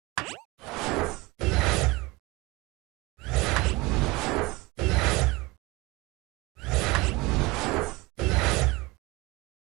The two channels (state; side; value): quieter; left; 23.1 dB